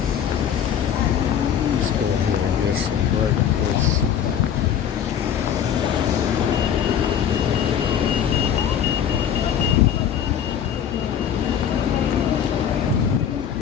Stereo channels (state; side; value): quieter; right; 8.8 dB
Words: Let's go ahead and get some breakfast.